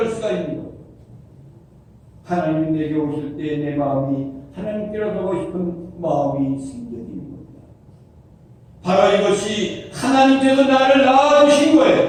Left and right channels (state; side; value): identical; both; correlation 1.00